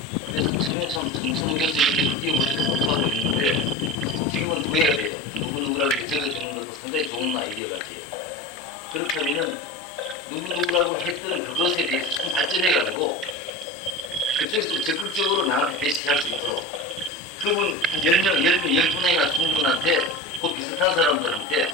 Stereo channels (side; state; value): both; normal; correlation 0.30